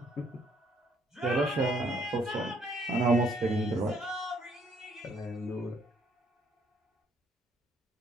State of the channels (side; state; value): both; normal; correlation 0.67